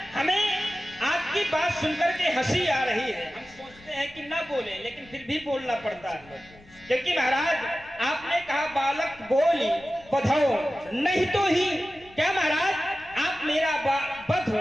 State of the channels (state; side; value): noise; left; rumble, 25 dB below the sound